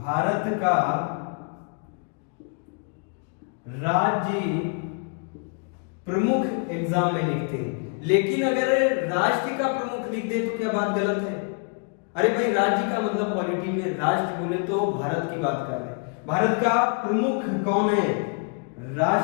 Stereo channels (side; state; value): right; quieter; 38.5 dB